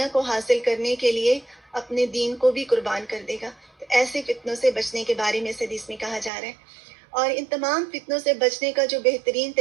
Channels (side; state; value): left; drops out; at 6.3 s